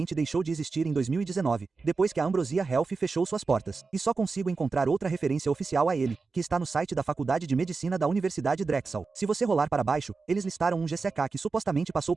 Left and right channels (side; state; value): left; quieter; 4.3 dB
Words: deixou de existir em 2019, depois que a Ambrosia Health fechou suas portas. E só consigo encontrar outra referência oficial a ele, que está no site da Faculdade de Medicina da Universidade Drexel. Se você rolar para baixo, eles listaram um GCK que supostamente passou